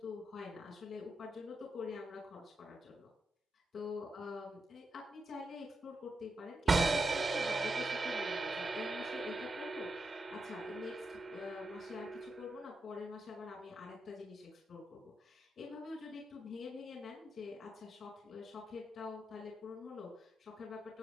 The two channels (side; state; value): both; normal; correlation 0.86